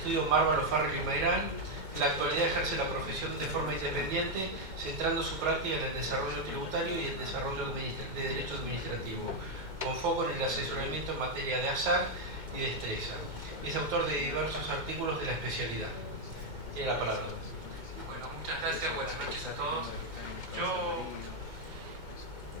Mármol, O'Farrell y Mayrán. En la actualidad ejerce la profesión de forma independiente, centrando su práctica en el desarrollo tributario y el desarrollo de derecho administrativo, con foco en el asesoramiento en materia de azar y destreza. Es autor de diversos artículos de la especialidad. Tiene la palabra. Bueno, muchas gracias, buenas noches a todos.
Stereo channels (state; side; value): late; left; 2.2 ms